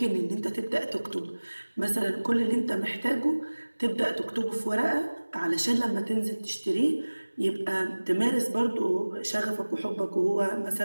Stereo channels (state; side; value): inverted; both; correlation -1.00